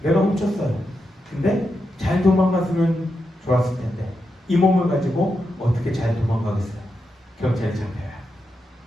내가 훔쳤어요. 근데 잘 도망갔으면 좋았을 텐데 이 몸을 가지고 어떻게 잘 도망가겠어요? 경찰에 잡혀요.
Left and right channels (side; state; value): both; normal; correlation 0.86